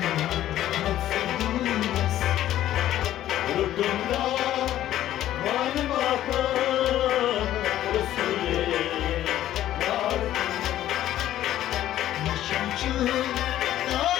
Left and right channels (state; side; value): quieter; right; 12.9 dB